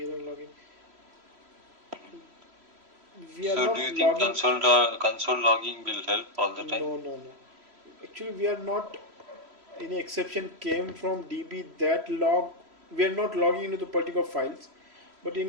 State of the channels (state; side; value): late; left; 3.0 ms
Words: logging. We are so not do you think console logging will help all the time? No. Actually, we are not. Any exception came from DB that log. We are not logging into the particular files, but